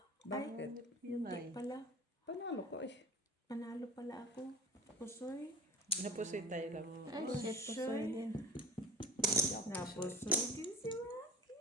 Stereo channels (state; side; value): normal; both; correlation 0.36